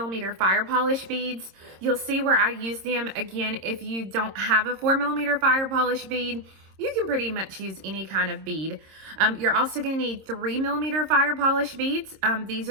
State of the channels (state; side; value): late; left; 26 ms